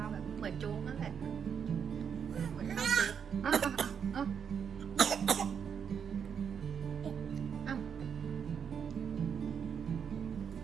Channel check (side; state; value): left; quieter; 7.3 dB